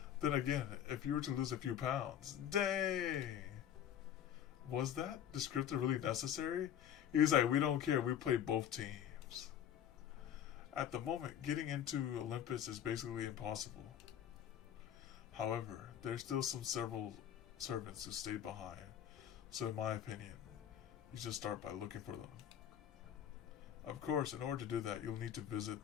Then again, if you were to lose a few pounds, dang! Was that descriptor really necessary? He was like, we don't care, we play both teams. At the moment, getting into Olympus is basically impossible. However, there's still several servants who stayed behind, so in my opinion, you should start by looking for them. Of course, in order to do that, you'll need to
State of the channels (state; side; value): quieter; right; 9.8 dB